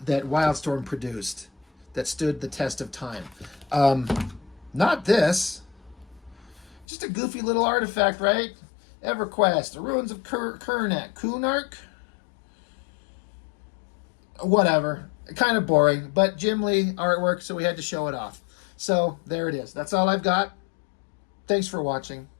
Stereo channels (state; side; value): drops out; right; at 6.9 s